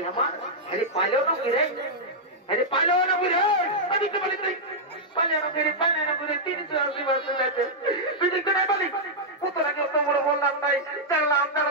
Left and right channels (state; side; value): normal; both; correlation -0.07